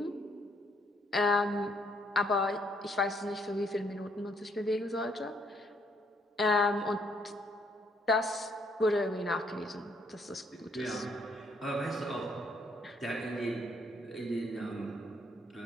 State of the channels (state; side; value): normal; both; correlation 0.69